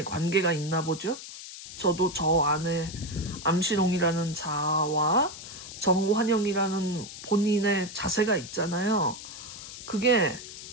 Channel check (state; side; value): noise; left; hiss, 12 dB below the sound